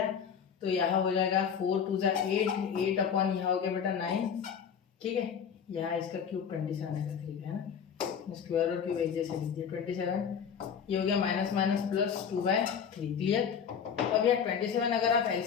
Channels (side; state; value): right; quieter; 7.3 dB